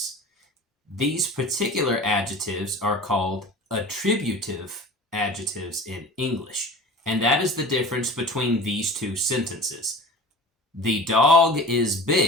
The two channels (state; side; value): normal; both; correlation 0.38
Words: These particular adjectives are called attributive adjectives in English. And that is the difference between these two sentences. The dog is